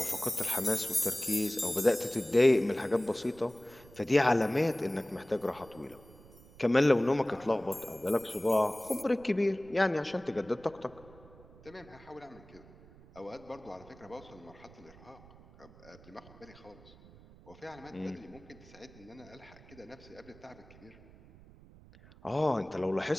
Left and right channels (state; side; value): noise; right; rumble, 22 dB below the sound